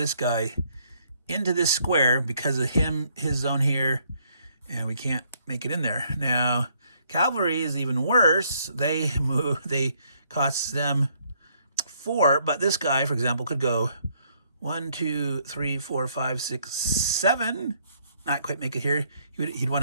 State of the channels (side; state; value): both; inverted; correlation -0.68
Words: guy into this square because of his zone here, and we can't make it in there. Now, cavalry is even worse. They cost them 4, but this guy, for example, could go 1, 2, 3, 4, 5, 6, 7. Not quite make it here. He'd